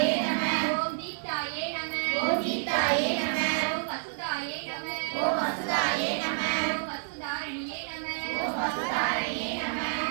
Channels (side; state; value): left; silent; 58 dB below the other